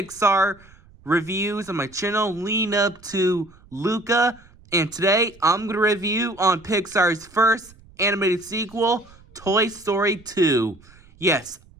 reviews on my channel, leading up to Luca. And today I'm going to review on Pixar's first animated sequel, Toy Story 2. Yes,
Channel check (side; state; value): right; noise; rumble, 26 dB below the sound